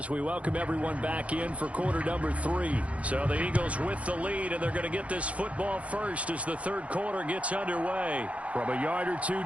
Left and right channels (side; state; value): left; late; 0.064 ms